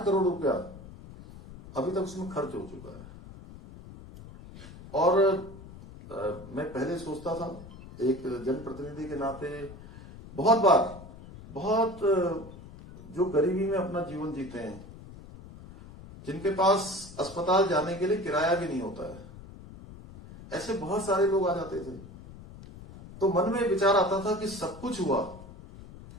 करोड़ रुपया अभी तक उसमें खर्च हो चुका है। और मैं पहले सोचता था एक जनप्रतिनिधि के नाते, बहुत बार बहुत जो गरीबी में अपना जीवन जीते हैं, जिनके पास अस्पताल जाने के लिए किराया भी नहीं होता है, ऐसे बहुत सारे लोग आ जाते थे। तो मन में विचार आता था कि सब कुछ हुआ,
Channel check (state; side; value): noise; left; rumble, 16 dB below the sound